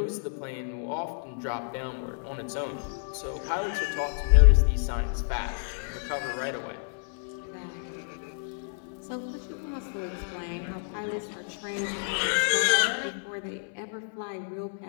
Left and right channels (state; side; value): silent; right; 58 dB below the other